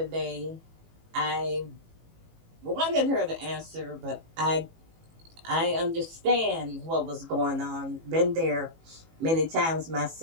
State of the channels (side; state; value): left; late; 18 ms